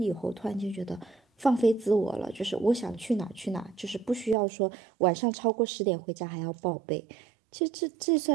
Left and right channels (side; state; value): left; drops out; at 4.4 s